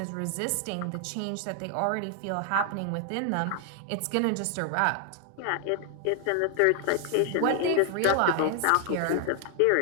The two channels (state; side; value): different; both; correlation 0.00